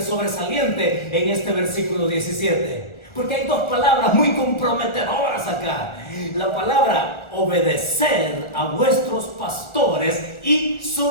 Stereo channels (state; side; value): late; right; 1.4 ms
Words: sobresaliente en este versículo 17? Porque hay dos palabras muy comprometedoras acá. La palabra obedecer a vuestros pastores y